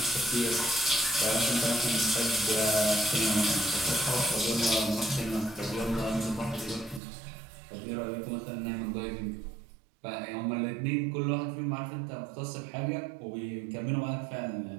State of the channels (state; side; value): drops out; left; at 7.0 s